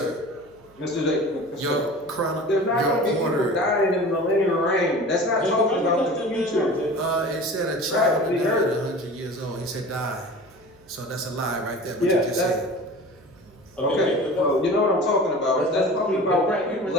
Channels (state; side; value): noise; right; hum, 30 dB below the sound